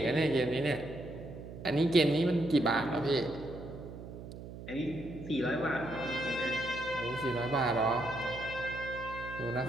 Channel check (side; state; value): right; noise; hum, 12 dB below the sound